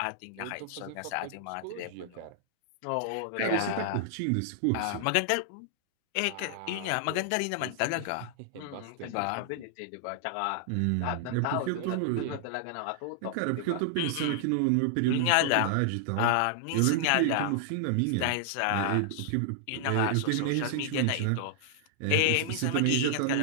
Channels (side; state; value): both; different; correlation -0.01